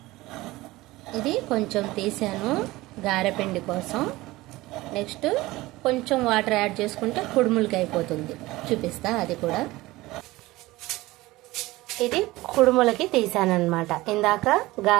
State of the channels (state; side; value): quieter; left; 19.2 dB